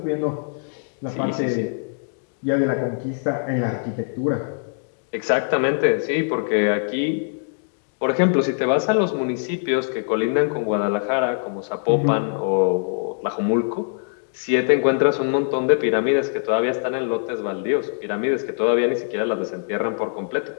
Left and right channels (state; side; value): silent; right; digital silence